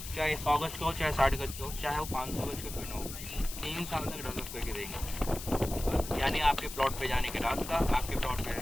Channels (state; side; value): noise; left; hiss, 10 dB below the sound